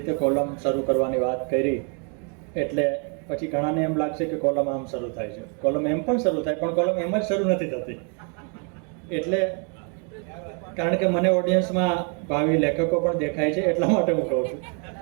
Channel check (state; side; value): quieter; left; 39.1 dB